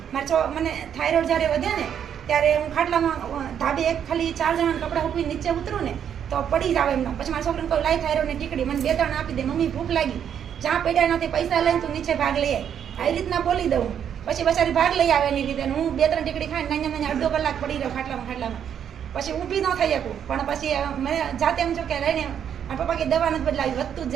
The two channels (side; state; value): left; quieter; 8.8 dB